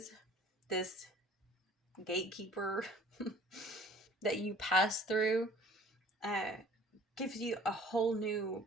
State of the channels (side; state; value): both; normal; correlation 0.50